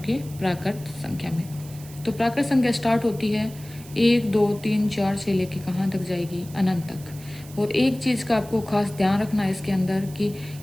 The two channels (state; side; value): noise; right; hiss, 19 dB below the sound